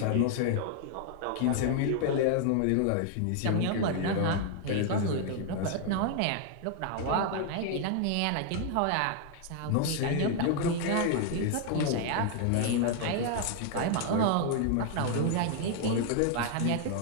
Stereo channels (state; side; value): different; both; correlation 0.00